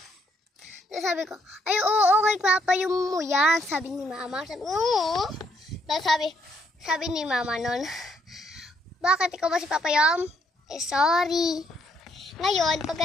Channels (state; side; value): normal; both; correlation 0.71